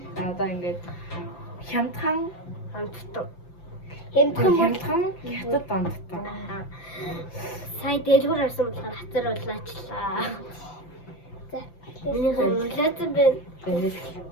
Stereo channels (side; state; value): right; late; 5.8 ms